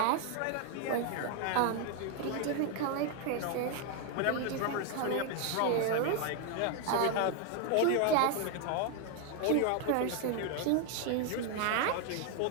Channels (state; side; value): different; both; correlation 0.01